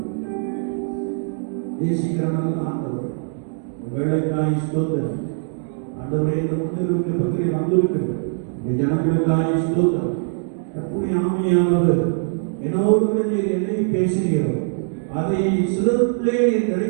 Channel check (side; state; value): left; silent; 60 dB below the other